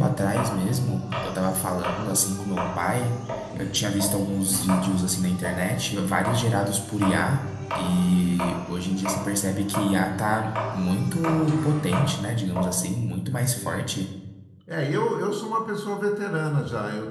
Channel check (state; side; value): identical; both; correlation 1.00